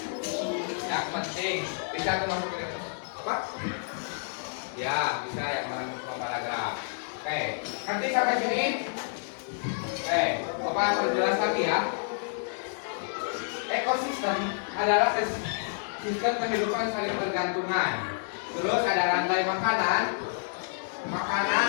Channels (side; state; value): right; silent; digital silence